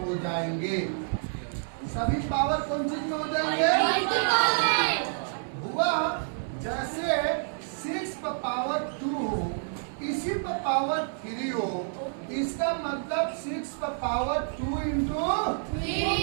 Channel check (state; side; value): silent; left; 59 dB below the other